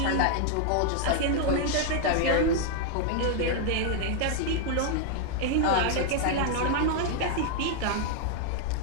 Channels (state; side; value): different; both; correlation 0.00